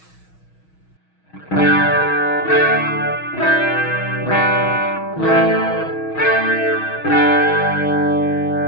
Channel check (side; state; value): right; late; 6.3 ms